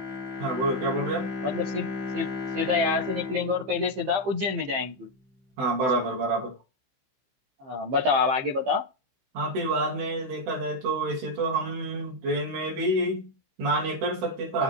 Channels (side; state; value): left; late; 15 ms